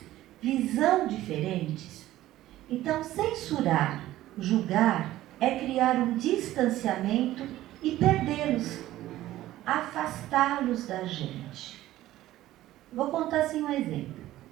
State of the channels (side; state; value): left; quieter; 14.9 dB